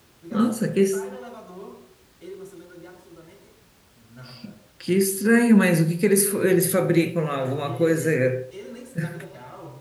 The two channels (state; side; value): identical; both; correlation 1.00